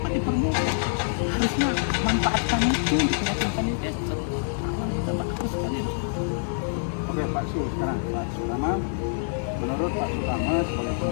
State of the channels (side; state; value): right; silent; digital silence